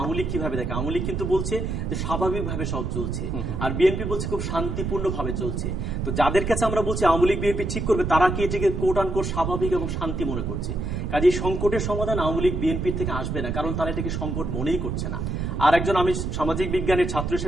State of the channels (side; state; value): right; noise; rumble, 2 dB below the sound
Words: লীগ কিভাবে দেখে, আওয়ামী লীগ কিন্তু বলছে যে স্বাভাবিকভাবে সব চলছে, আর বিএনপি বলছে খুব শান্তিপূর্ণ ভাবে চলছে। তো যাদের কাছে আমরা বলছি আওয়ামী লীগ বিএনপি ঠিক করবে, তারা কি এটাকে কোট আন কোট স্বাভাবিক এবং শান্তি মনে করছে। কাজে সংকটের সমাধান আওয়ামী লীগ বিএনপির থেকে আসবে না, কারণ তারা এটাকে সংকট মনেই করছে না। আর একজন আমি সামাজিক বিজ্ঞানের ছাত্র